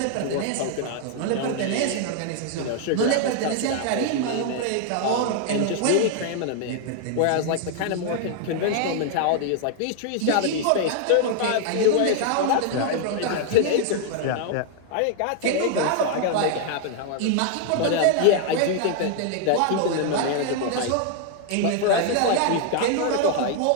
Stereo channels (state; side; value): different; both; correlation 0.00